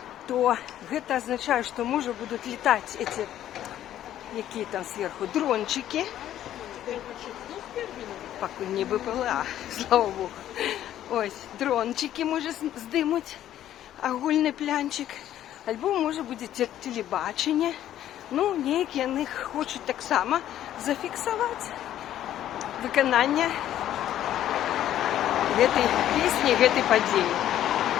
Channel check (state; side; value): quieter; right; 11.9 dB